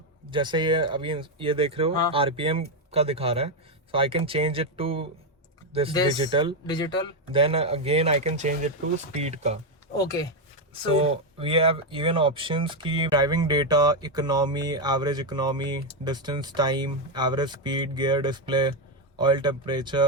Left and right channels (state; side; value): normal; both; correlation 0.05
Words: जैसे ये अभी ये देख रहे हो, हाँ। RPM का दिखा रहा है, so I can change it to this digital, then again I can change it to speed का। Okay So we have even options की driving data, economy, average economy, distance time, average speed, gear display, oil temperature,